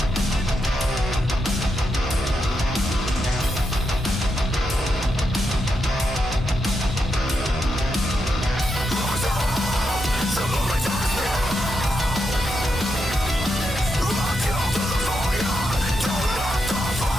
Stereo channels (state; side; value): normal; both; correlation 0.84